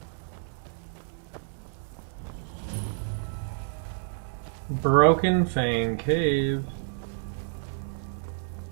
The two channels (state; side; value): silent; left; digital silence